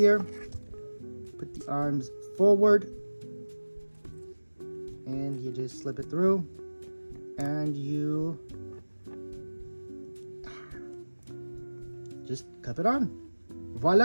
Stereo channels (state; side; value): inverted; both; correlation -1.00